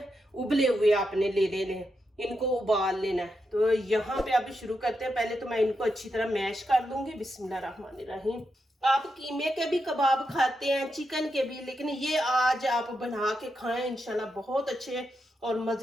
उबले हुए आपने ले लेने, इनको उबाल लेना है। तो यहाँ पे अब शुरू करते हैं। पहले तो मैं इनको अच्छी तरह मैश कर लूंगी। बिस्मिल्लाहिर्रहमानिर्रहीम। आप कीमे के भी कबाब खाते हैं, चिकन के भी, लेकिन ये आज आप बना के खाएं इंशाल्लाह, बहुत अच्छे और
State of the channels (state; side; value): normal; both; correlation 0.85